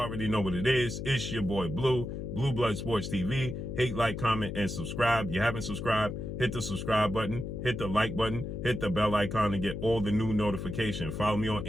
already know what it is. It's your boy Blue, Blue Blood Sports TV. Hate, like, comment, and subscribe. You haven't subscribed, hit the subscribe button, hit the like button, hit the bell icon to get all the new notifications. Follow me on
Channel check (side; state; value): left; noise; hum, 6 dB below the sound